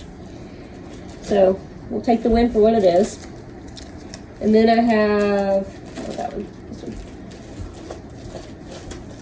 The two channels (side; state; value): both; identical; correlation 1.00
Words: So, we'll take the win for what it is. And then I have, that one,